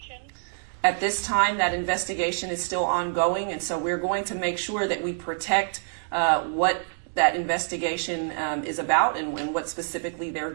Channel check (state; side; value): silent; left; digital silence